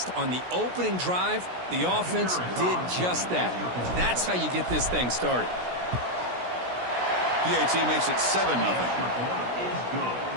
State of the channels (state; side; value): late; left; 16 ms